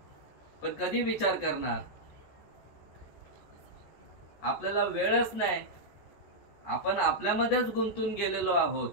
पण कधी विचार करणार? आपल्याला वेळच नाही, आपण आपल्यामध्येच गुंतून गेलेलो आहोत.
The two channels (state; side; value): late; right; 14 ms